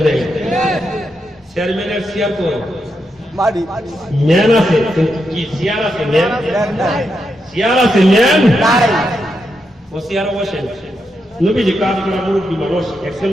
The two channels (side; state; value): both; normal; correlation 0.84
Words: নাই? চেয়ারম্যানের চেয়ার কই? ম্যান আছে, কিন্তু কি চেয়ার আছে? ম্যান চেয়ার আছে, ম্যান ও চেয়ারে বসেন। নবীজি কাজ করা মুরব্বী মানুষ, একজন